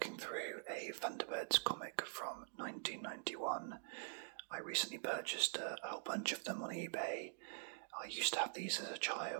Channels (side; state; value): left; silent; digital silence